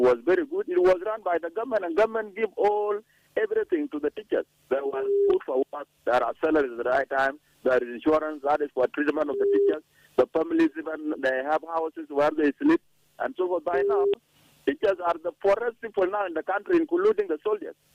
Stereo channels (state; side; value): identical; both; correlation 1.00